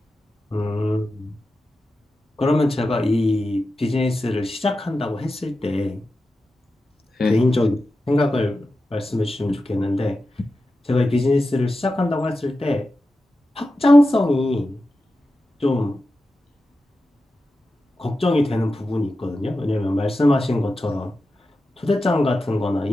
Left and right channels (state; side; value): normal; both; correlation 0.92